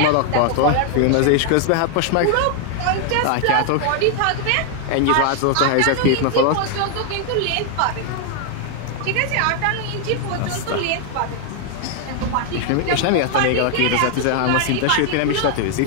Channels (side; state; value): both; different; correlation 0.00